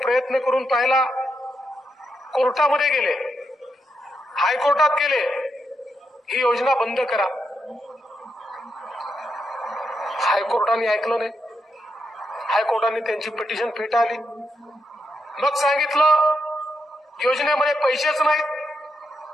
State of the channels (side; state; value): both; normal; correlation 0.82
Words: करून पाहिला, कोर्टामध्ये गेले, हायकोर्टात गेले, ही योजना बंद करा. हायकोर्टाने ऐकलं नाही. हायकोर्टाने त्यांची पिटिशन फेटाळली. मग सांगितलं योजनेमध्ये पैसेच नाहीत.